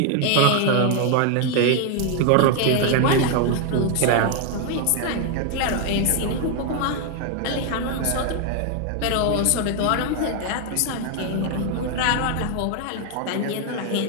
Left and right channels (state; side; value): different; both; correlation 0.01